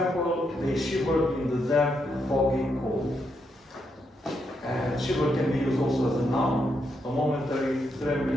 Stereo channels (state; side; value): normal; both; correlation 0.80